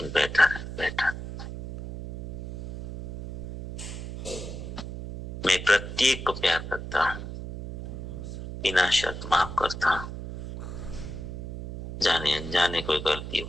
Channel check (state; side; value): noise; right; hum, 8 dB below the sound